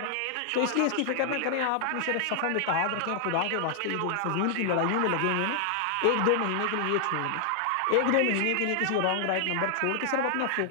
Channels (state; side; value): different; both; correlation 0.00